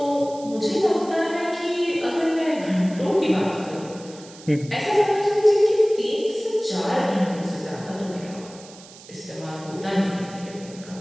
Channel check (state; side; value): noise; right; hiss, 20 dB below the sound